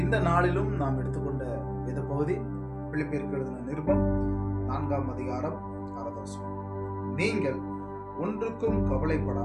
இந்த நாளிலும் நாம் எடுத்துக்கொண்ட வேத பகுதி பிலிப்பியருக்கு எழுதின நிருபம் 4ஆம் அதிகாரம் 6ஆவது வசனம். நீங்கள் ஒன்றுக்கும்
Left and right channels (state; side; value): identical; both; correlation 1.00